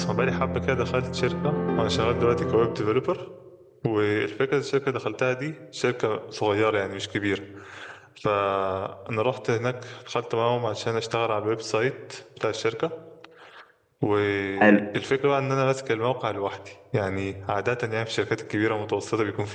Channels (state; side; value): identical; both; correlation 1.00